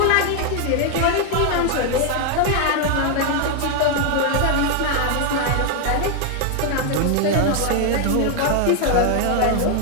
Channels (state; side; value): different; both; correlation 0.00